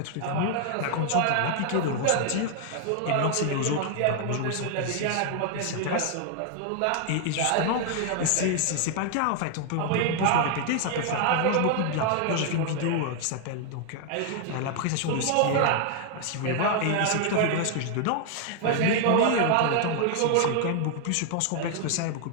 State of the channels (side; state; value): both; different; correlation 0.00